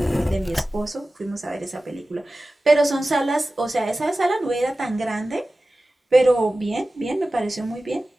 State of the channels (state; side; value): normal; both; correlation 0.96